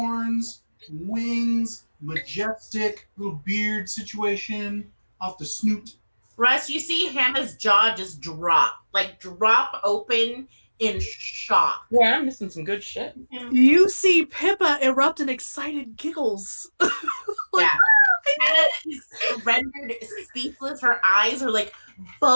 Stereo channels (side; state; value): both; inverted; correlation -1.00